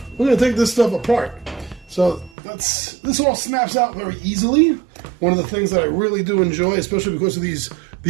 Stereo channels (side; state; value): left; drops out; at 2.3 s